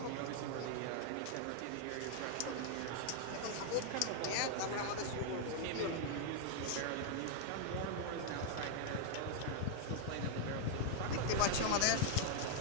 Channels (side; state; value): both; different; correlation -0.01